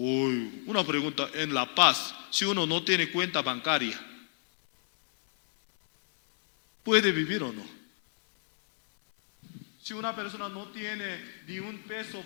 una pregunta: en La Paz, si uno no tiene cuenta bancaria, ¿puede vivir o no? Si una persona no tiene ni un peso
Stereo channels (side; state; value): right; silent; 58 dB below the other